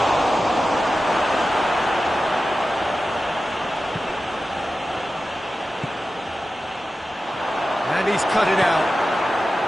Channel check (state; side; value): normal; both; correlation 0.93